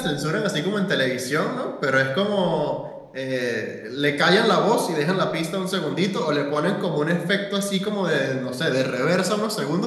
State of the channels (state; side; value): identical; both; correlation 1.00